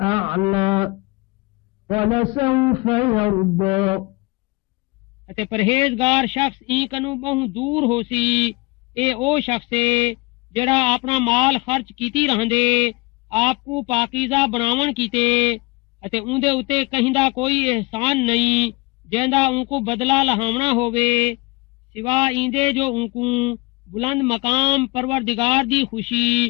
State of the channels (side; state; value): right; quieter; 25.1 dB